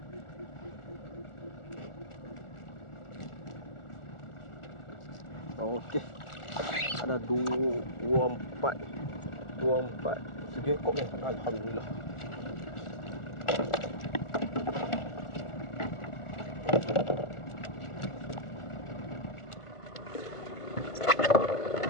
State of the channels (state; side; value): late; right; 1.4 ms